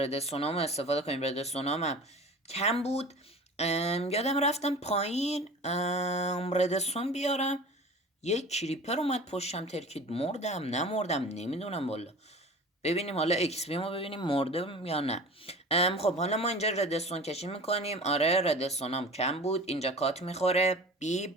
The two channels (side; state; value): both; normal; correlation 0.39